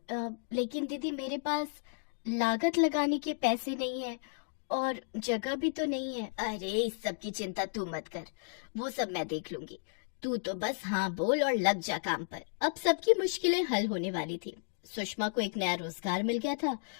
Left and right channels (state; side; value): silent; right; digital silence